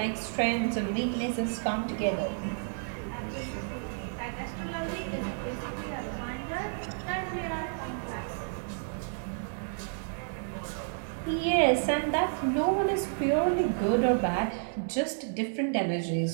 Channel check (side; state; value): left; silent; digital silence